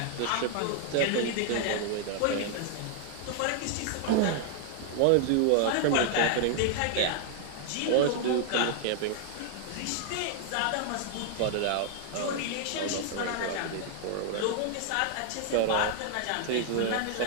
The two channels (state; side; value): different; both; correlation 0.00